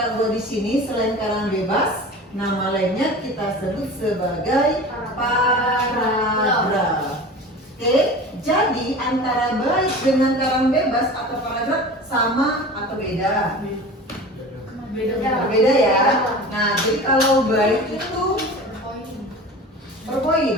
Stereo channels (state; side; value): normal; both; correlation 0.36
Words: buat di sini selain karangan bebas, nama lainnya kita sebut sebagai paragraf. Oke, jadi antara bait dengan karangan bebas atau paragraf sama atau beda? Beda ya. Nah, jadi kalau bait itu per